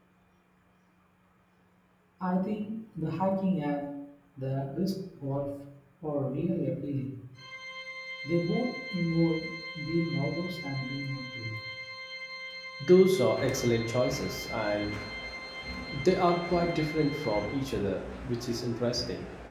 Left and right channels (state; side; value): identical; both; correlation 1.00